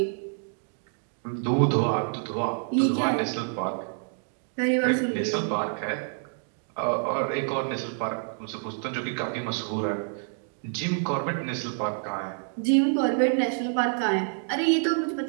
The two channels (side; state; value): left; silent; 60 dB below the other